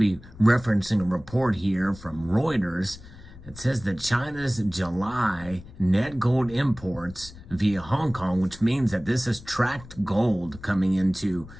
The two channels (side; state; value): left; noise; rumble, 18 dB below the sound